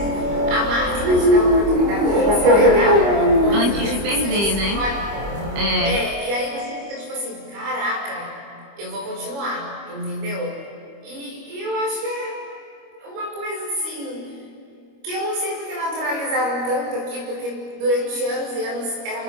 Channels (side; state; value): left; late; 25 ms